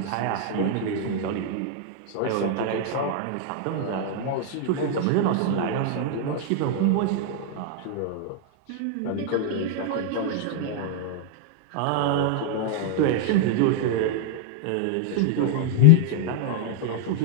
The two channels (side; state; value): both; different; correlation -0.01